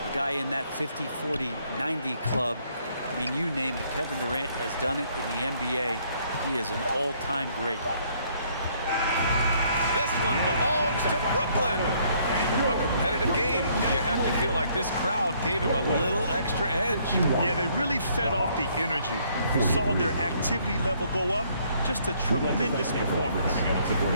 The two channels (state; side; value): inverted; both; correlation -0.66